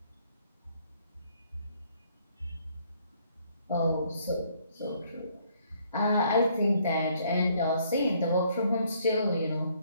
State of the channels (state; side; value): inverted; both; correlation -0.66